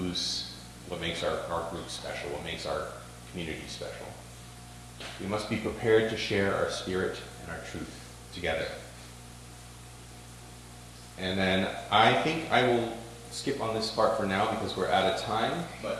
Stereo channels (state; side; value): identical; both; correlation 1.00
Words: what makes our group special, what makes our community special. We must be prepared to share our spirit and our truth together. And then I think I will skip on this part for now, because we're out of time,